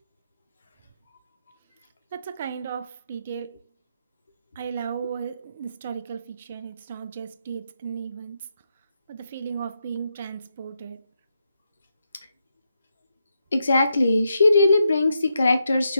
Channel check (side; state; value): both; inverted; correlation -0.82